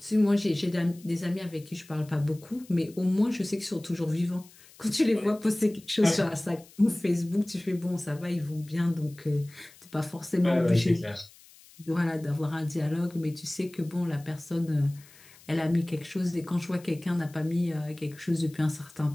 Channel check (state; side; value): noise; left; hiss, 24 dB below the sound